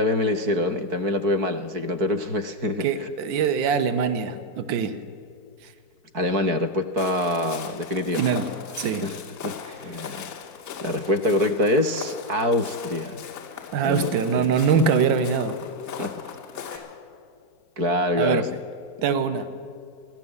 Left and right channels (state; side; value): late; left; 4.6 ms